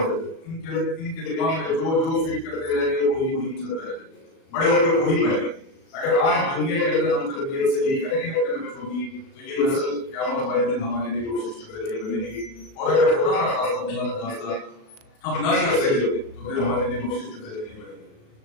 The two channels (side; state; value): right; late; 37 ms